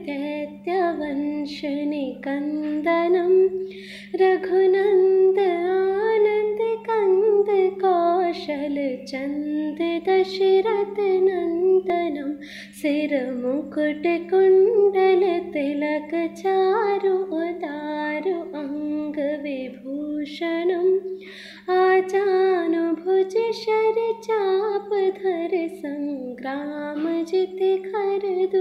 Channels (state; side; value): identical; both; correlation 1.00